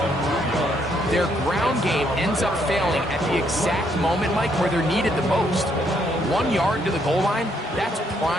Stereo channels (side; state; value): both; normal; correlation 0.72